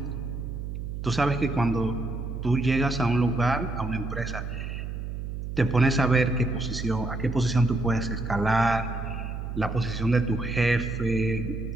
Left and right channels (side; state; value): right; noise; hum, 6 dB below the sound